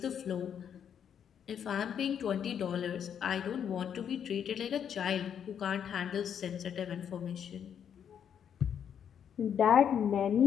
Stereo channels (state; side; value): quieter; right; 8.4 dB